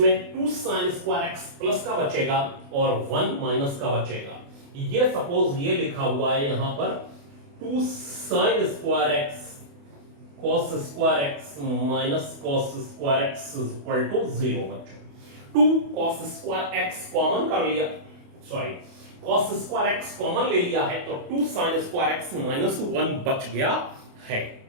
2 साइन स्क्वायर एक्स प्लस का बचेगा और 1 माइनस का बचेगा। ये सपोज ये लिखा हुआ है यहां पर 2 sine square X cos square x minus cos square x equal to 0 बच्चों। 2 cos स्क्वायर एक्स कॉमन कर लिया, cos स्क्वायर एक्स कॉमन ले लिया है, तो 2 sin स्क्वायर एक्स माइनस 1 बच गया है,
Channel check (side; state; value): left; late; 28 ms